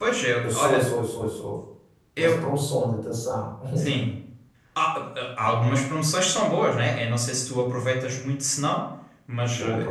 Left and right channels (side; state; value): both; identical; correlation 1.00